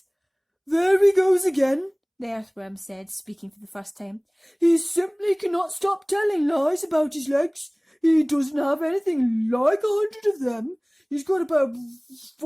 "There he goes again," the earthworm said, speaking for the first time. "He simply cannot stop telling lies about his legs. He doesn't have anything like 100 of them. He's got about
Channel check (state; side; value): identical; both; correlation 1.00